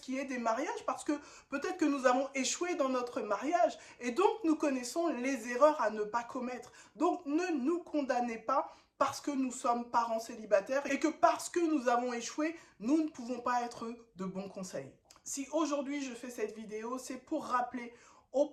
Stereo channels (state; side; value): identical; both; correlation 1.00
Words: qui est des mariages parce que peut-être que nous avons échoué dans notre mariage et donc nous connaissons les erreurs à ne pas commettre. Donc ne nous condamnez pas parce que nous sommes parents célibataires et que parce que nous avons échoué, nous ne pouvons pas être de bons conseils. Si aujourd'hui je fais cette vidéo, c'est pour rappeler aux